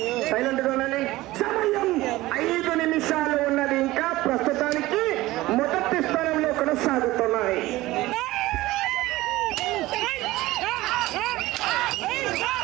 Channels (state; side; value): quieter; left; 18.1 dB